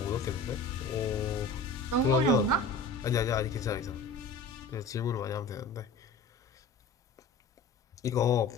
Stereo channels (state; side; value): quieter; right; 3.5 dB